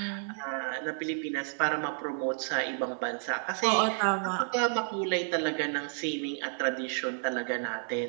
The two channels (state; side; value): silent; left; 57 dB below the other